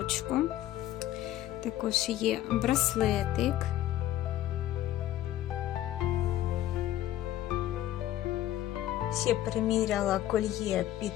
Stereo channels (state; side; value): quieter; right; 13.4 dB